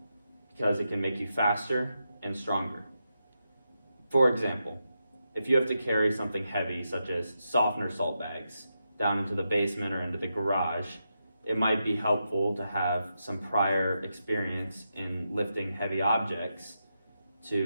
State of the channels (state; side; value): inverted; both; correlation -0.86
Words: because it can make you faster and stronger. For example, if you have to carry something heavy such as softener salt bags down into the basement or into the garage, it might be helpful to have some prior experience in lifting heavy objects